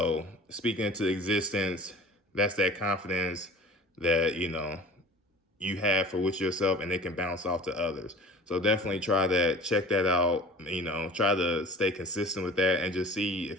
speaking into existence, that's that confidence that you have for with yourself, and it can bounce off to others. So definitely try that, check that out, try to stay consistent with that, and just see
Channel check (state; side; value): normal; both; correlation 0.42